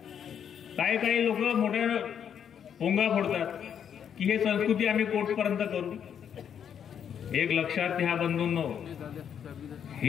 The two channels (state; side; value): quieter; right; 8.4 dB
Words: काही लोक मोठ्या पोंगा फोडतात की हे संस्कृती आम्ही कोर्टपर्यंत करू. एक लक्षात घ्या बंधूंनो,